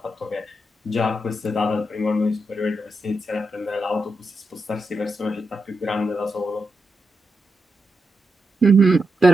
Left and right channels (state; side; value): normal; both; correlation 0.86